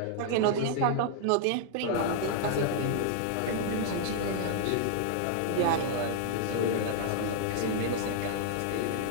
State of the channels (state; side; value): different; both; correlation -0.01